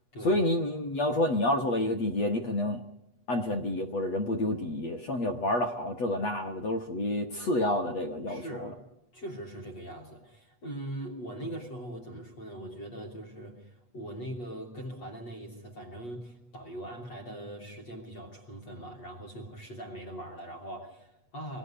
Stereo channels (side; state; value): right; late; 8.3 ms